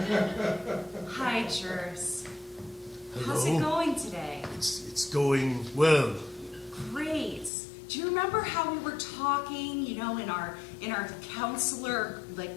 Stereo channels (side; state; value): right; drops out; at 7.5 s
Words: Hi, Jers. Hello. How's it going today? It's going well. Great. Do you remember how we were talking, in our counselor